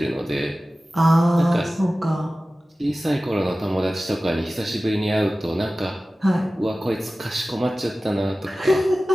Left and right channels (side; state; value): both; normal; correlation 0.96